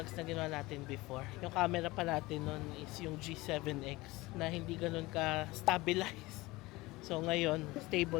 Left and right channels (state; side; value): quieter; right; 20.9 dB